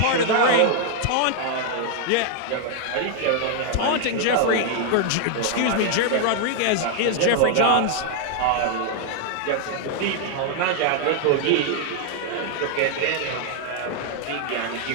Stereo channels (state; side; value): different; both; correlation 0.00